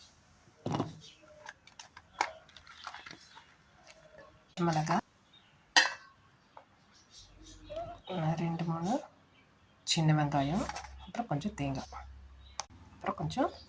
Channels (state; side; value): identical; both; correlation 1.00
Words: மிளகாய், 2-3 சின்ன வெங்காயம், அப்புறம் கொஞ்சம்